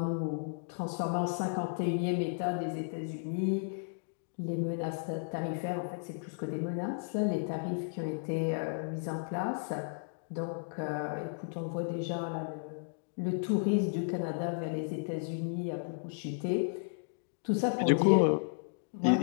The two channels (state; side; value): silent; right; digital silence